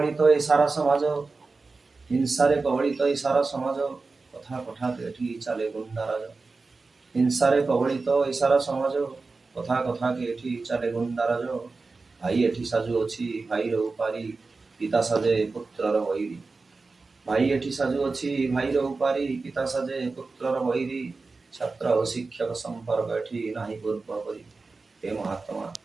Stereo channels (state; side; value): quieter; left; 3.9 dB